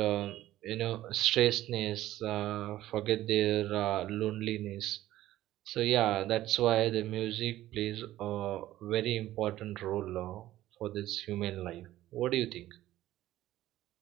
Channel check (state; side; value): quieter; left; 14.6 dB